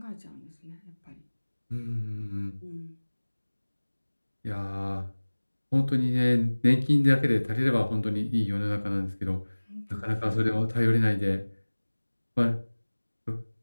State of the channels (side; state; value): both; inverted; correlation -1.00